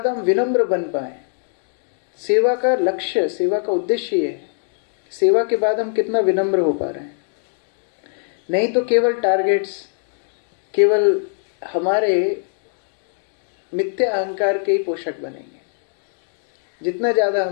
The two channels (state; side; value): silent; right; 62 dB below the other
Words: हम विनम्र बन पाए, सेवा का लक्ष्य, सेवा का उद्देश्य ये है, सेवा के बाद हम कितना विनम्र हो पा रहे हैं। नहीं तो केवल टारगेट्स, केवल हमारे मिथ्या अहंकार के ही पोषक बनेंगे। जितना ज्यादा